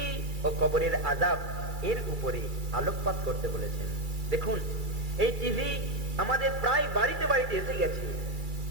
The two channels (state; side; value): late; left; 2.3 ms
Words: ও কবরের আযাব এর উপরে আলোকপাত করতে বলেছেন। দেখুন, এই টিভি আমাদের প্রায় বাড়িতে বাড়িতে এসে গেছে,